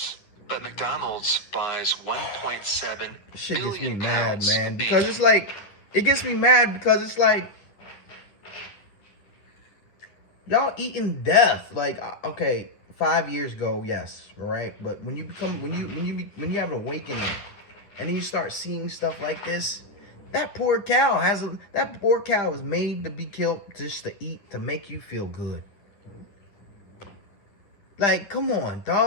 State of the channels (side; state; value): right; late; 10 ms